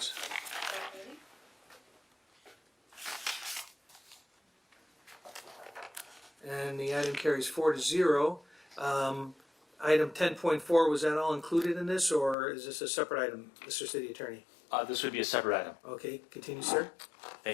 And the item carries 4-0. Item 10.4, was that all included in this, or is this a separate item, Mr. City Attorney? This would be a separate item. Okay, continue, sir.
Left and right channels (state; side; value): drops out; right; at 12.4 s